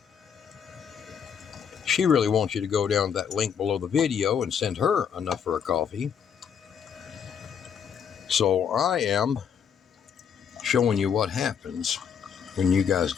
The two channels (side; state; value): right; quieter; 7.6 dB